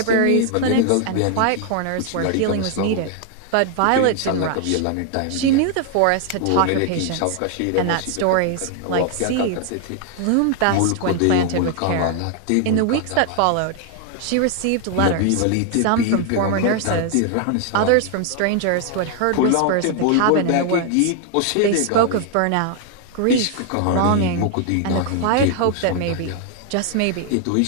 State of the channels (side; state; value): both; different; correlation 0.00